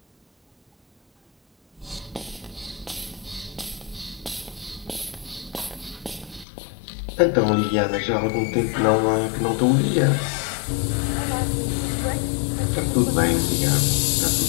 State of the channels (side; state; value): right; drops out; at 6.5 s